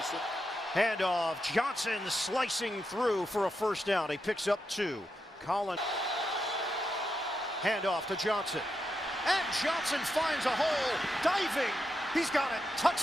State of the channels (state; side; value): normal; both; correlation 0.85